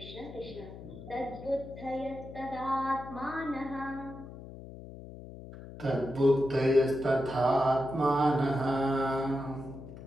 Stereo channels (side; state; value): left; noise; hum, 14 dB below the sound